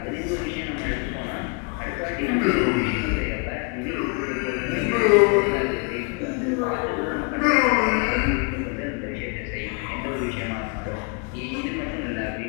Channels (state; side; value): quieter; right; 33.8 dB